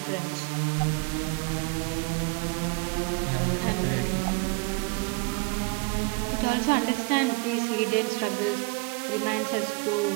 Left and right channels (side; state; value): left; quieter; 28.3 dB